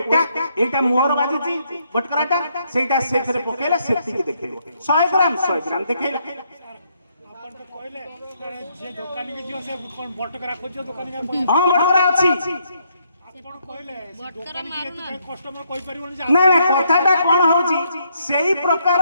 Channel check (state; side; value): inverted; both; correlation -0.73